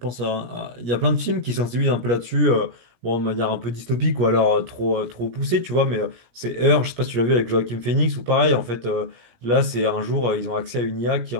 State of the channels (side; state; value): left; late; 17 ms